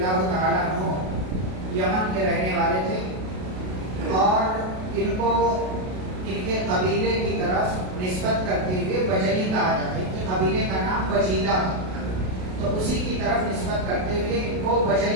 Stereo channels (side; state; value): left; late; 32 ms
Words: تعالی عنہ یمن کے رہنے والے تھے اور ان کو ان کے قبیلے کی طرف نسبت کرتے ہوئے بجلی کہا جاتا ہے. ان کے قبیلے کا نام بجیلہ تھا، تو اسی کی طرف نسبت کرتے ہوئے ان کو